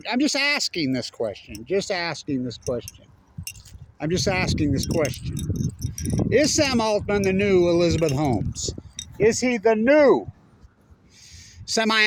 just asking this question. I'm just asking this question. Is Sam Altman the new Elizabeth Holmes? Is he the new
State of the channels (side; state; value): both; identical; correlation 1.00